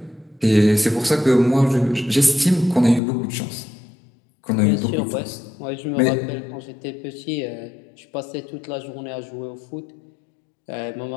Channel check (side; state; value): right; drops out; at 3.0 s